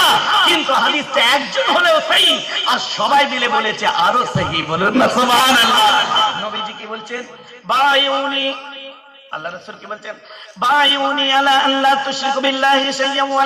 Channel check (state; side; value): identical; both; correlation 1.00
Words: কিন্তু হাদিসটা একজন হলেও সহিহ, আর সবাই মিলে বলেছে আরো সহিহ। বলুন না সুবহানাল্লাহ। নবীজি কি বলছেন? বায়ুনি, আল্লাহ রাসূল কি বলছেন? বায়ুনি আলা আল্লা তুশরিকু বিল্লাহি শাইয়্যান ওয়া